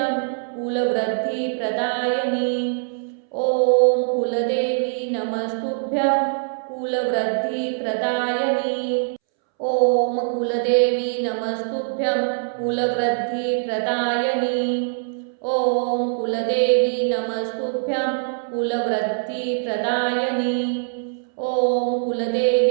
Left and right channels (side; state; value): left; silent; 64 dB below the other